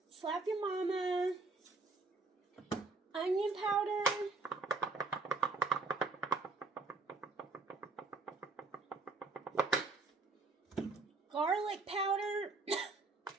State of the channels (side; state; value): left; quieter; 3.7 dB